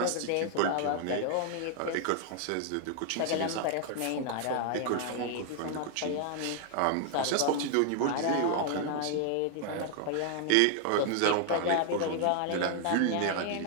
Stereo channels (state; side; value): different; both; correlation 0.00